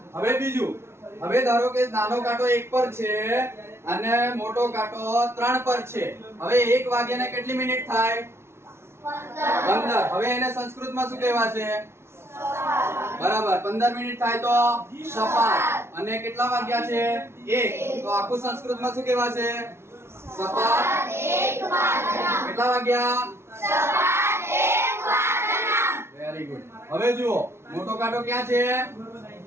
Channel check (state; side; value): late; left; 0.12 ms